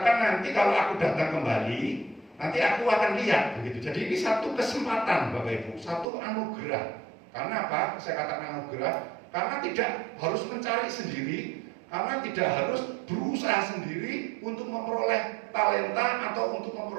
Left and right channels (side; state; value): left; drops out; at 6.1 s